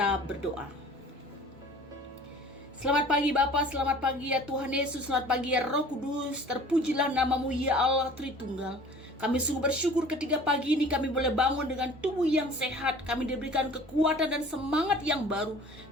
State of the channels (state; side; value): normal; both; correlation 0.46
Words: berdoa. Selamat pagi Bapa, selamat pagi ya Tuhan Yesus, selamat pagi ya Roh Kudus. Terpujilah namamu ya Allah Tritunggal. Kami sungguh bersyukur ketika pagi ini kami boleh bangun dengan tubuh yang sehat. Kami diberikan kekuatan dan semangat yang baru.